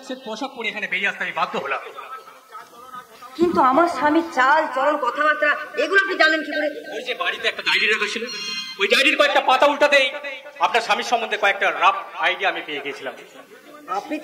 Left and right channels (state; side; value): identical; both; correlation 1.00